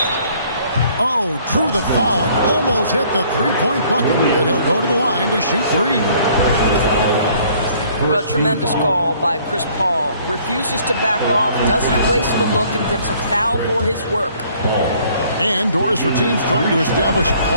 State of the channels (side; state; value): both; inverted; correlation -0.59